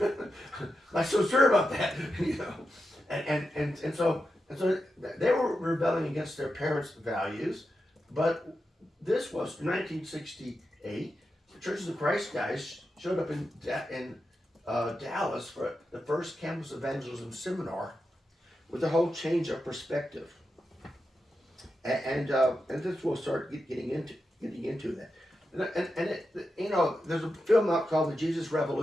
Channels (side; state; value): both; normal; correlation 0.88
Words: not so sure about that, you know. And so they were rebelling against their parents' values, but this was 1968. The Churches of Christ guys showed up in Dallas for the first campus evangelism seminar with a whole change of perspective, and this will start getting into that. And it, you know, there's a film out called The Jesus